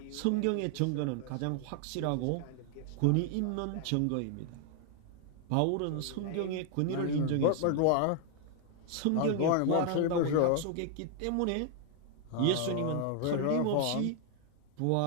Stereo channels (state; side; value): different; both; correlation 0.00